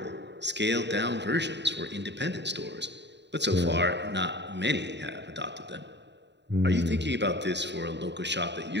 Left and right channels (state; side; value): late; left; 0.51 ms